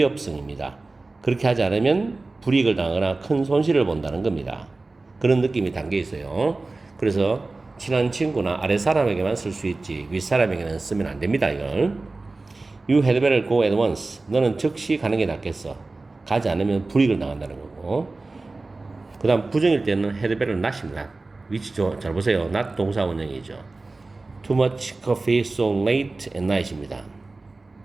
그렇게 하지 않으면 불이익을 당하거나 큰 손실을 본다는 겁니다. 그런 느낌이 담겨 있어요. 그래서 친한 친구나 아랫사람에게만 쓸 수 있지 윗사람에게는 쓰면 안 됩니다. 이걸 You had better go at once. 너는 즉시 가는 게 낫겠어. 가지 않으면 불이익을 당한다는 거고. 그 다음 부정일 때는 had better not입니다. 위치죠. 잘 보세요. not 동사원형이죠. Too much coffee so late at night입니다.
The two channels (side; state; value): left; quieter; 3.4 dB